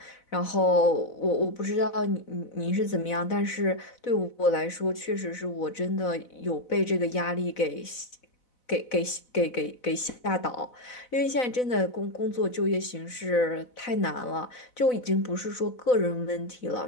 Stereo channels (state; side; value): late; right; 4.0 ms